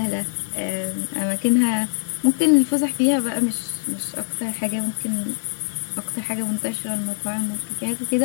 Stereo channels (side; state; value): right; silent; digital silence